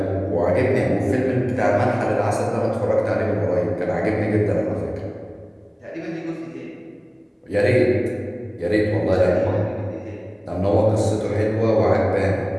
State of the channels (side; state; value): both; identical; correlation 1.00